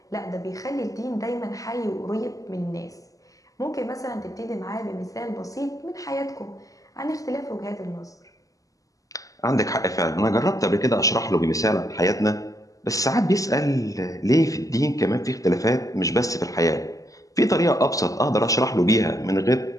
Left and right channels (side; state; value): right; late; 0.17 ms